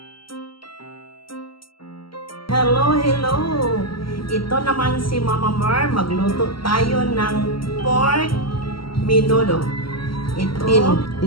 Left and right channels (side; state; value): right; late; 0.74 ms